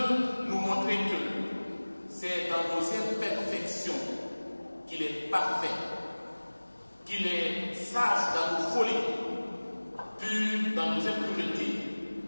nous montrer que c'est dans nos imperfections qu'il est parfait, qu'il est sage dans nos folies, pur dans nos impuretés,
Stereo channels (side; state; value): both; inverted; correlation -1.00